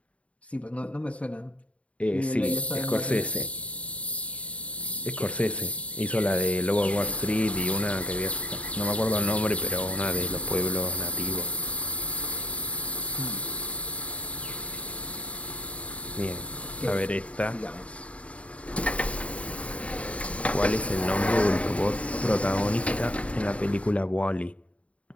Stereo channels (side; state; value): right; late; 0.065 ms